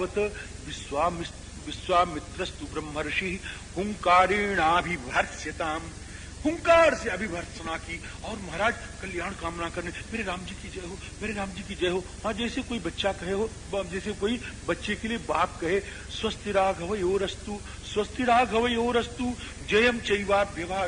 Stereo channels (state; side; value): identical; both; correlation 1.00